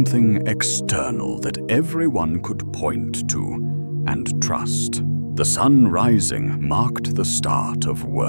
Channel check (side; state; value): both; inverted; correlation -1.00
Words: external that everyone could point to and trust. The sun rising marked the start of